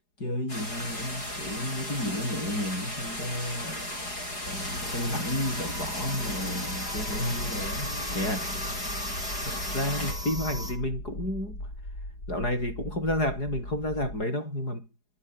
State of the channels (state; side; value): late; right; 4.8 ms